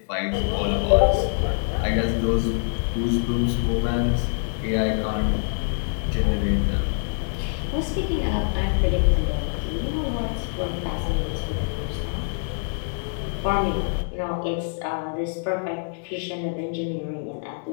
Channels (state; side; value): silent; right; digital silence